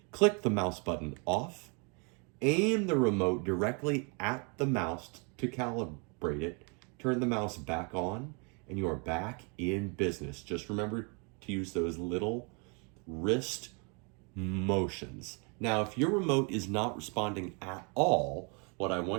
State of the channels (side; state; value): left; quieter; 34.3 dB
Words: click the mouse button off, aim the remote directly at the mouse to calibrate it, turn the mouse back on, and you are back in business. Just remember to use those little wrist motions. Now, if your remote is not responding at all, what I